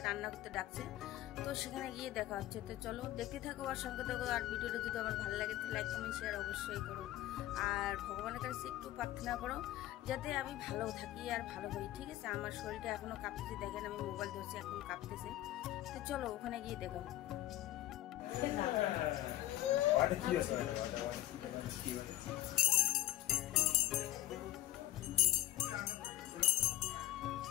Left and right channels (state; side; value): quieter; right; 14.8 dB